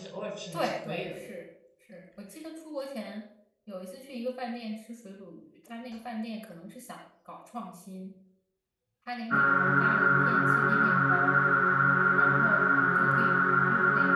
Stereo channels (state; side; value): identical; both; correlation 1.00